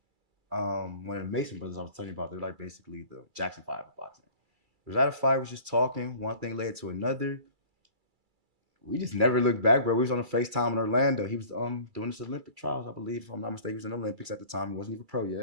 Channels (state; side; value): late; left; 2.3 ms